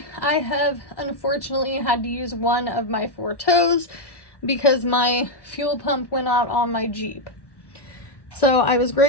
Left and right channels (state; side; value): late; right; 1.1 ms